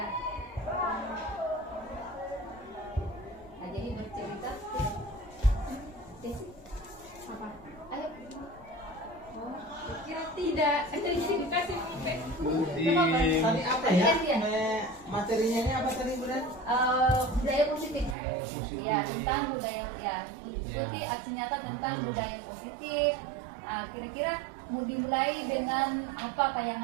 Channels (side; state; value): left; drops out; at 18.2 s